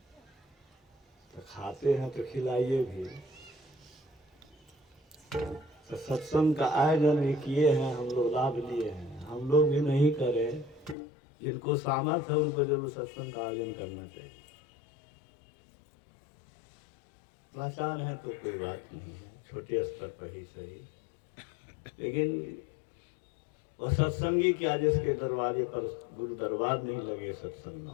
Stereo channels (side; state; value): right; drops out; at 11.0 s